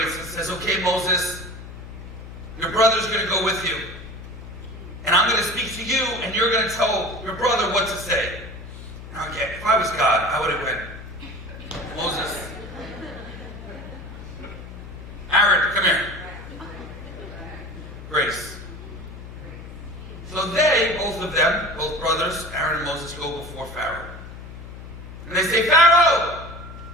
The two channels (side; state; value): left; noise; hum, 13 dB below the sound